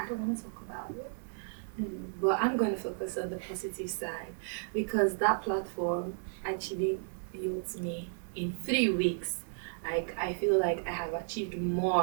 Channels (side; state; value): left; silent; digital silence